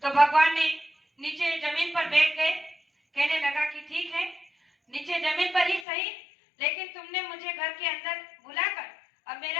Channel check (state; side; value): drops out; right; at 5.9 s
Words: तो भगवान ने नीचे जमीन पर बैठ गए। कहने लगा कि ठीक है, नीचे जमीन पर ही सही, लेकिन तुमने मुझे घर के अंदर बुलाकर अब